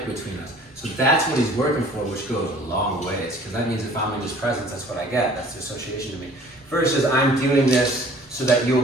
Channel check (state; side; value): normal; both; correlation 0.51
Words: between us. So that's what he's working for, which goes a long ways. Because that means if I'm in his presence, that's what I get. That's the association to me. Versus I'm doing this so that